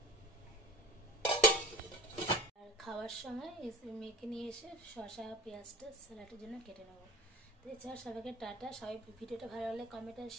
আর খাওয়ার সময় মেখে নিয়ে এসে শসা পেঁয়াজটা স্যালাডের জন্য কেটে নেবো। তো এছাড়া সবাইকে টাটা। সবাই ভিডিওটা ভালো লাগলে কমেন্ট আর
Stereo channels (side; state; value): both; normal; correlation 0.41